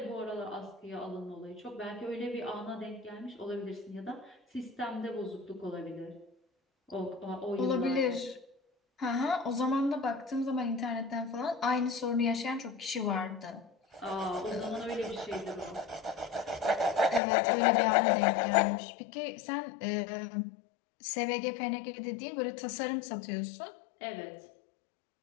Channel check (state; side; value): drops out; right; at 17.2 s